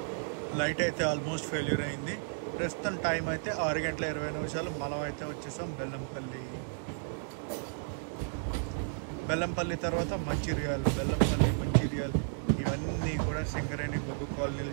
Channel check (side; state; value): left; silent; digital silence